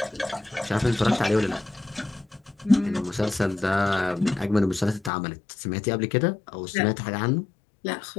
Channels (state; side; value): drops out; right; at 5.1 s